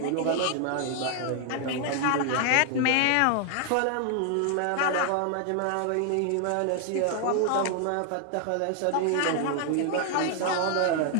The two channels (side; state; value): both; different; correlation 0.00